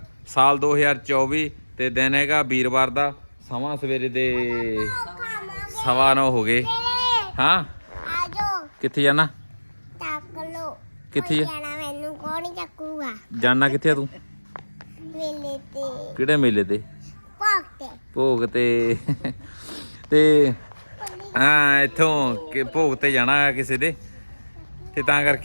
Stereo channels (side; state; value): both; inverted; correlation -1.00